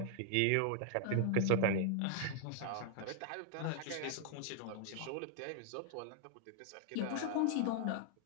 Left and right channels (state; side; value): different; both; correlation 0.00